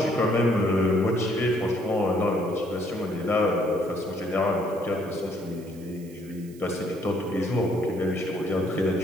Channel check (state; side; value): noise; right; hiss, 24 dB below the sound